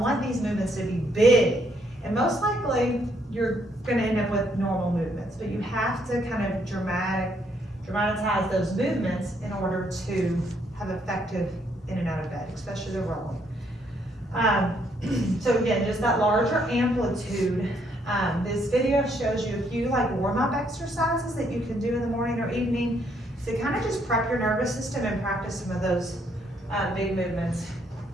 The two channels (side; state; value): both; normal; correlation 0.71